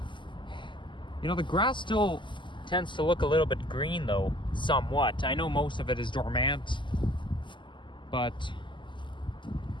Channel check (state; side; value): late; right; 0.24 ms